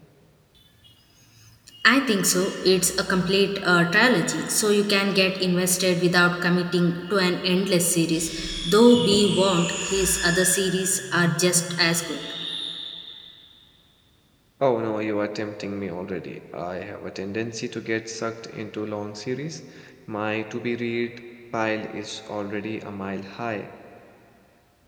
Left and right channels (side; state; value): both; identical; correlation 1.00